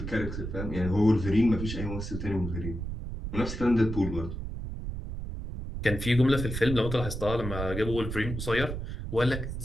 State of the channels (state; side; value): noise; right; rumble, 6 dB below the sound